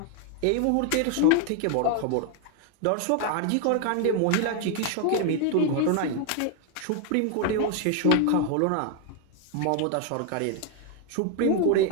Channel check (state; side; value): different; both; correlation 0.01